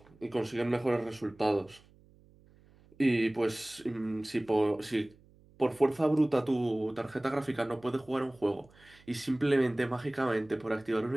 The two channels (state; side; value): noise; right; hum, 28 dB below the sound